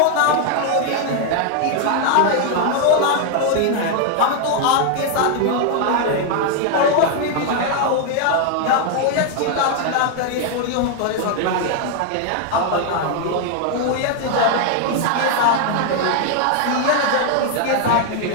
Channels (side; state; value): both; different; correlation 0.00